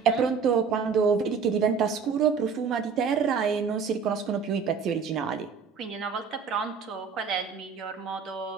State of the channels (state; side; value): quieter; left; 5.9 dB